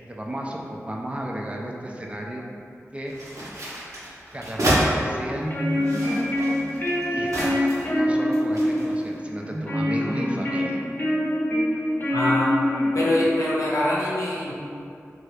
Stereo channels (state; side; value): normal; both; correlation 0.87